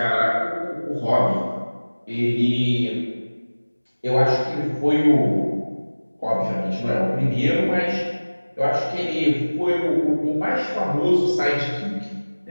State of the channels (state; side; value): inverted; both; correlation -1.00